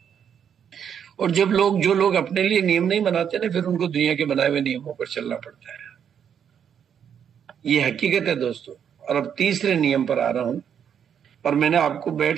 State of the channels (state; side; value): quieter; left; 8.3 dB